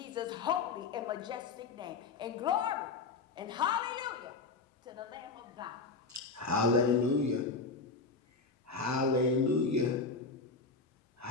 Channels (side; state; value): right; quieter; 4.3 dB